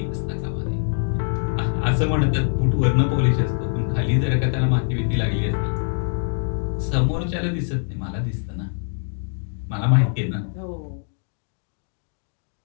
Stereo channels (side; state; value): right; silent; 63 dB below the other